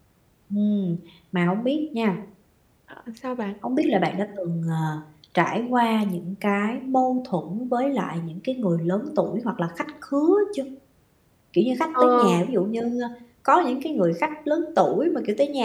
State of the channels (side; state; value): both; identical; correlation 1.00